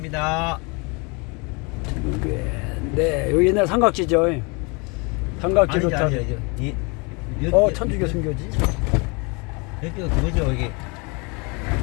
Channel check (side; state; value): right; quieter; 30.3 dB